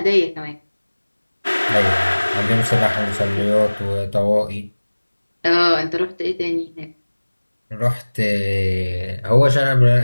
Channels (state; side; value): inverted; both; correlation -1.00